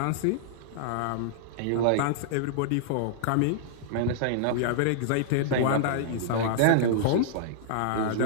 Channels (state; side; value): different; both; correlation -0.01